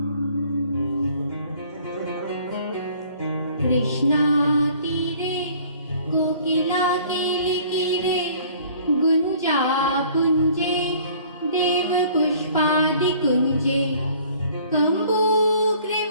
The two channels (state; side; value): inverted; both; correlation -0.53